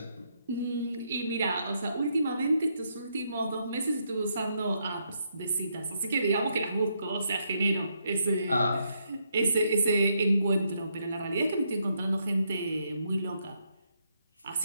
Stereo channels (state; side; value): inverted; both; correlation -0.77